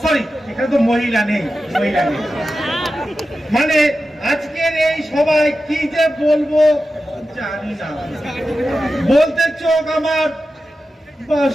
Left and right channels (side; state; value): both; normal; correlation 0.92